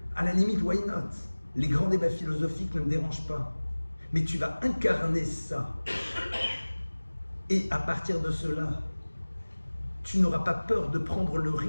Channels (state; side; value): inverted; both; correlation -1.00